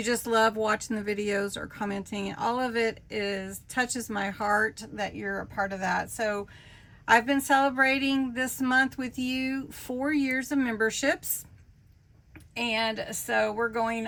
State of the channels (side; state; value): both; identical; correlation 1.00